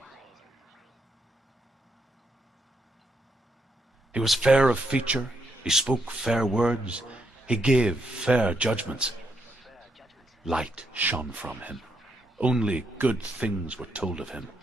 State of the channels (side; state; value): both; normal; correlation 0.78